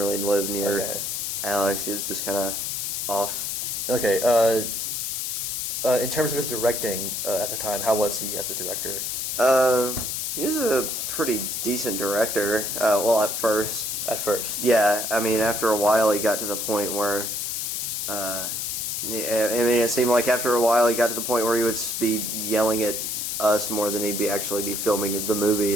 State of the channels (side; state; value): left; noise; hiss, 2 dB below the sound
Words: live near Okay. Alex. He was just kind of off. Okay. In terms of his directing at the time, how was he as a director? He was a pretty decent director. Well, at first. At first. Yeah, I mean, after a while, he got to the point where, I mean, it seemed like after a while, he got to the point where he would be yelling at us more than he'd actually be filming the movie.